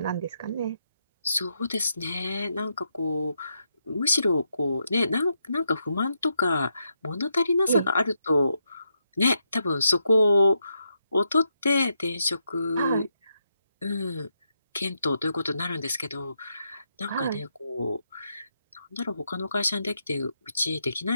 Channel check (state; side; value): inverted; both; correlation -0.81